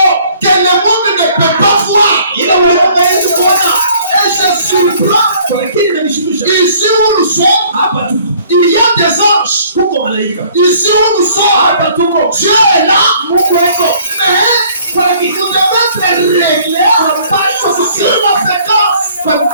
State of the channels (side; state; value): both; inverted; correlation -0.57